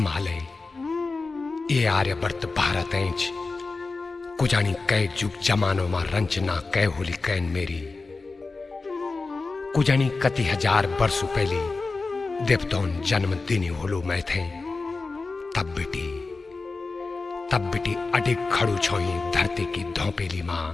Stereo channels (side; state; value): right; quieter; 3.9 dB